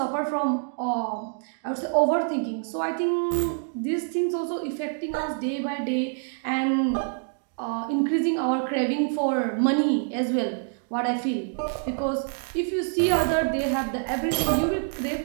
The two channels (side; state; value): left; silent; 57 dB below the other